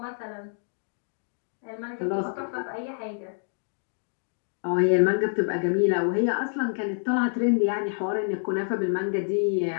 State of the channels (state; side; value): silent; right; digital silence